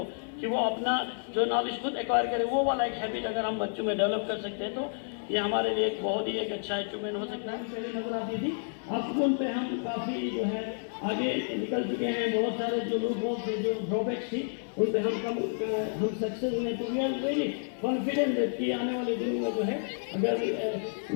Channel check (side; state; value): right; silent; 58 dB below the other